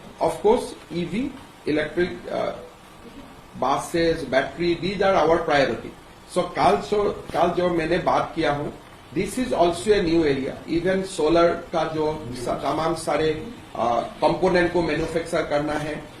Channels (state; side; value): identical; both; correlation 1.00